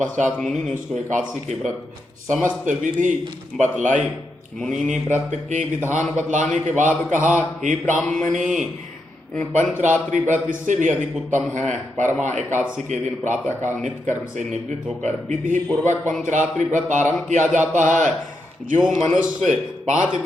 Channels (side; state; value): both; normal; correlation 0.84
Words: मुनि ने उसको एकादशी के व्रत समस्त विधि बतलाई। मुनि ने व्रत के विधान बतलाने के बाद कहा, हे ब्राह्मणी, पंचरात्रि व्रत इससे भी अधिक उत्तम है। परमा एकादशी के दिन प्रातःकाल नित्य कर्म से निवृत्त होकर विधि पूर्वक पंचरात्रि व्रत आरंभ किया जाता है। जो मनुष्य 5